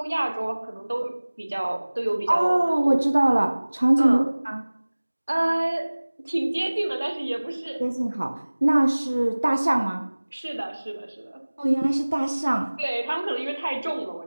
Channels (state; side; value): inverted; both; correlation -1.00